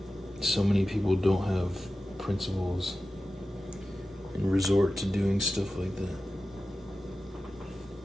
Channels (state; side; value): normal; both; correlation 0.94